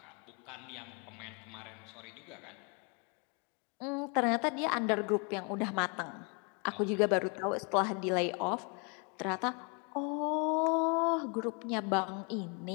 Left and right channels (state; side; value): quieter; right; 34.1 dB